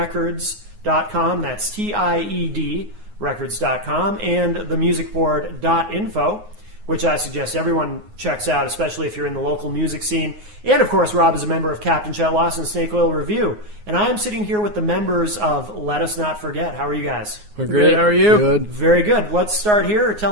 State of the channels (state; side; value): late; left; 9.5 ms